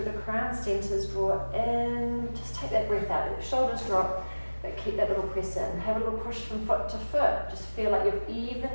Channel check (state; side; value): inverted; both; correlation -1.00